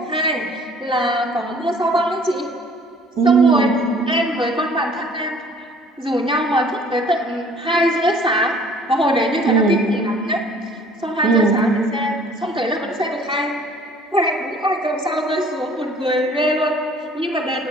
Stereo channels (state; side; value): normal; both; correlation 0.54